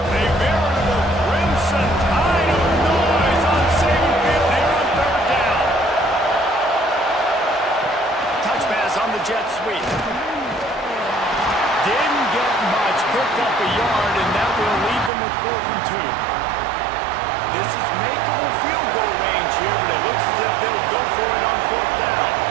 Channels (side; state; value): left; drops out; at 15.1 s